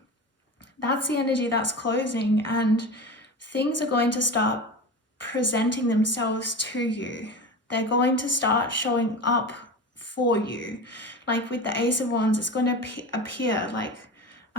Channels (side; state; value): both; normal; correlation 0.29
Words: that's the energy that's closing, and things are going to start presenting themselves to you. They're going to start showing up for you. Like with the Ace of Wands, it's going to appear, like